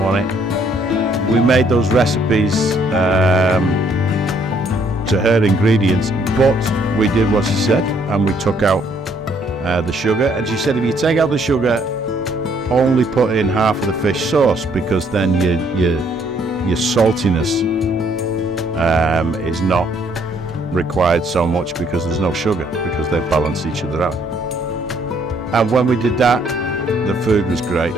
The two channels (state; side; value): normal; both; correlation 0.66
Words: it. We made those recipes to her ingredients, but we did what she said, and we took out the sugar. And she said, if you take out the sugar, only put in half of the fish sauce, because then your saltiness is not required so much, because there's no sugar, because they balance each other out. And when we did that, the food was great.